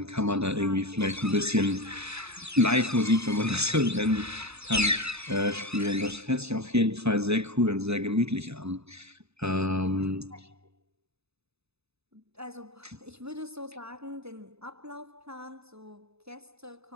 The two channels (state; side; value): late; left; 0.79 ms